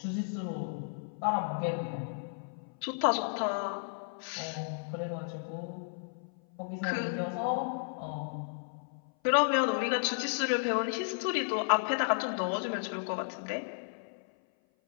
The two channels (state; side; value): silent; right; 55 dB below the other